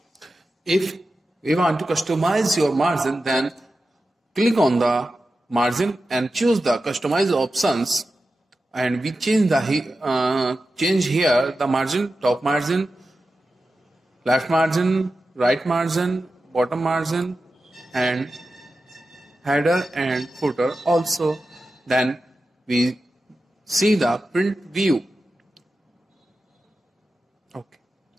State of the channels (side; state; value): both; normal; correlation 0.92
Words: if we want to customize your margin, then click on the margin and choose the customize options, and we change the change here the margin, top margin, left margin, right margin, bottom margin and header and footer also. Then we see the print view. Okay,